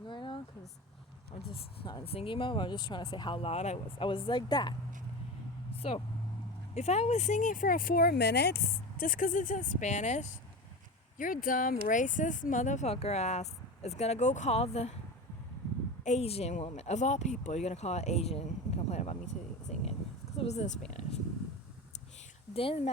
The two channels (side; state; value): both; normal; correlation 0.27